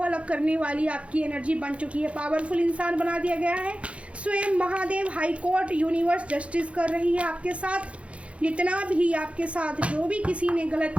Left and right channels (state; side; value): late; left; 0.062 ms